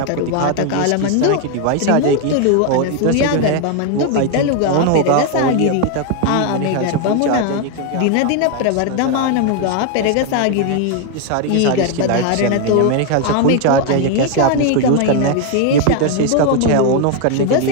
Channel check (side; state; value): both; different; correlation 0.01